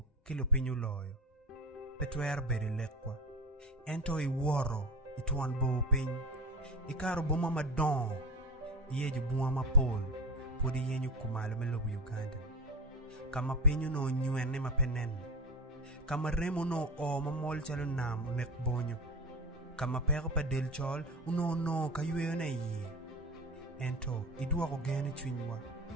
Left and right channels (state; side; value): normal; both; correlation 0.25